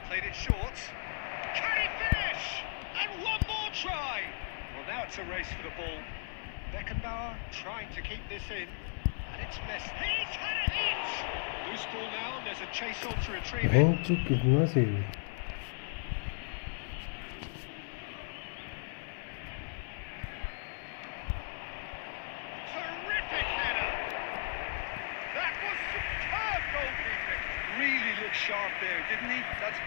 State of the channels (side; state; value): right; silent; digital silence